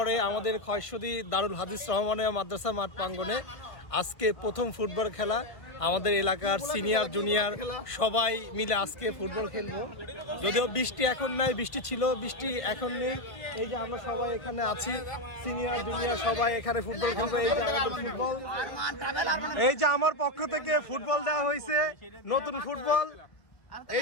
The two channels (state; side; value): late; right; 1.8 ms